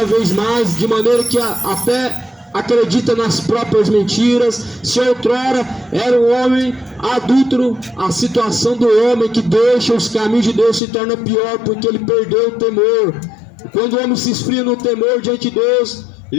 vez mais, de maneira que até acredita nas próprias mentiras. Se outrora era um homem adúltero, a situação do homem que deixa os caminhos de Deus se torna pior, porque ele perdeu o temor. Quando o homem se esfria no temor diante de Deus,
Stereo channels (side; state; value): right; drops out; at 10.8 s